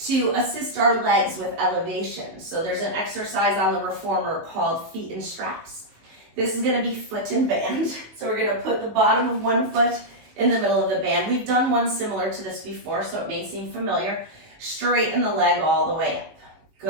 assist our legs with elevation. So there's an exercise on the reformer called feet and straps. This is going to be foot and band. So we're going to put the bottom of one foot in the middle of the band. We've done one similar to this before, so it may seem familiar. Straighten the leg all the way up.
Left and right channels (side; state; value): left; late; 19 ms